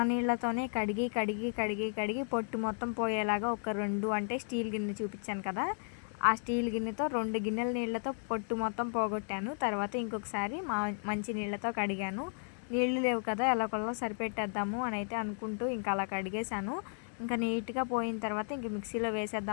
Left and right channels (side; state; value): right; silent; 55 dB below the other